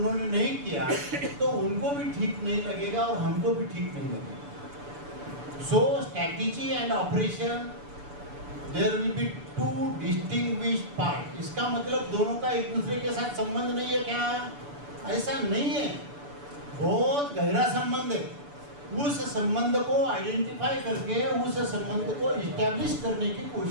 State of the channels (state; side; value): late; left; 6.9 ms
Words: नहीं किया, तो उनको भी ठीक नहीं लगेगा और हमको भी ठीक नहीं लगेगा। So strategy and operation, there will be two distinguished part. इसका मतलब दोनों का एक दूसरे के साथ संबंध नहीं है क्या? ऐसा नहीं है, बहुत गहरा संबंध है। उस संबंध को आइडेंटिफाई करके उस संबंध को इस्टेब्लिश करने की